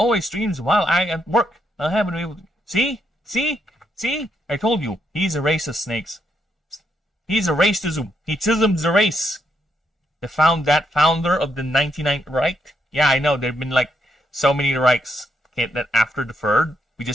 streams while I at work. I haven't been able to... See? I told you, he's a racist, Snakes. He's a racism. He tisms the race. The founder of the 99th Reich. Yeah, I know. There've been like so many Reichs that after the third, we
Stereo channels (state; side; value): normal; both; correlation 0.78